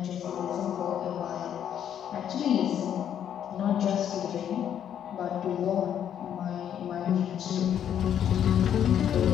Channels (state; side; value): quieter; right; 9.5 dB